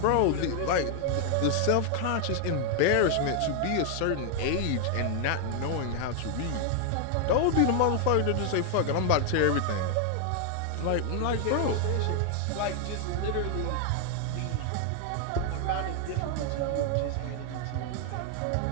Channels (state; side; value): different; both; correlation 0.00